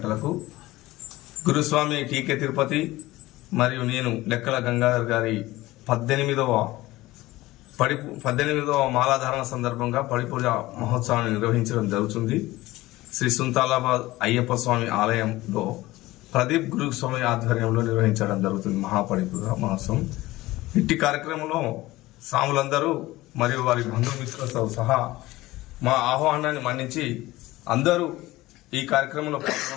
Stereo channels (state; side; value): quieter; right; 18.3 dB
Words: గురుస్వామి టీకే తిరుపతి మరియు నేను లెక్కల గంగాధర్ గారి 18వ మాలాధారణ సందర్భంగా పడిపూజ మహోత్సవాన్ని నిర్వహించడం జరుగుతుంది. శ్రీ సుంతాలాబాద్ అయ్యప్ప స్వామి ఆలయంలో ప్రదీప్ గురుస్వామి ఆధ్వర్యంలో నిర్వహించడం జరుగుతుంది మహాపడిపూజ మహోత్సవం. ఇట్టి కార్యక్రమంలో స్వాములందరూ మరియు వారి బంధుమిత్రులతో సహా మా ఆహ్వానాన్ని మన్నించి అందరూ ఈ కార్యక్రమంలో